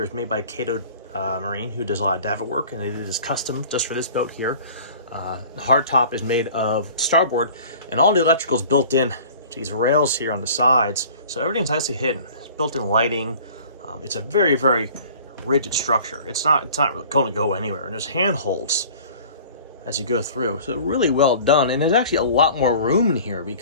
is made by Cato Marine, who does a lot of davit work, and it is custom just for this boat here. The hardtop is made of starboard, and all the electrical is built in to these rails here on the sides, so everything's nicely hidden. It's built-in lighting. It's a very, very rigid structure. It's not really going to go anywhere, and there's handholds as you go through, so really well done. And there's actually a lot more room in here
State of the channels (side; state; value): both; inverted; correlation -0.46